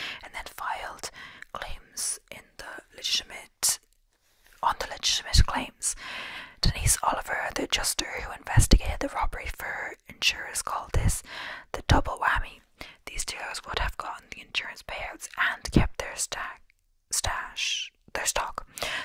and then filed claims on the legitimate claims. Denise Oliver, the adjuster who investigated the robbery for insurers, called this the double whammy. These dealers would have gotten the insurance payouts and kept their their stock.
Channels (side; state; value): both; identical; correlation 1.00